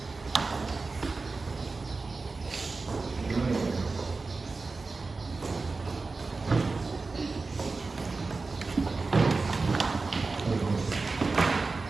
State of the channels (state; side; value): quieter; left; 3.9 dB